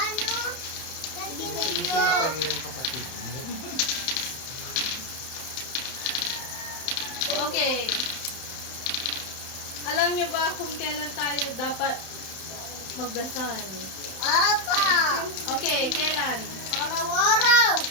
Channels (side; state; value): right; late; 31 ms